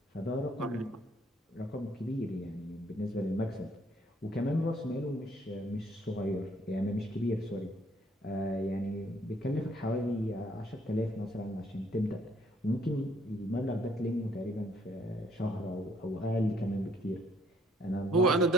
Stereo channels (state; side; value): normal; both; correlation 0.64